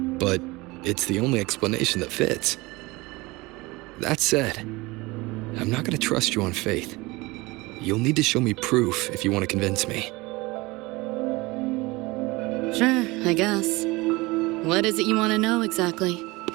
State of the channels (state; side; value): quieter; left; 22.6 dB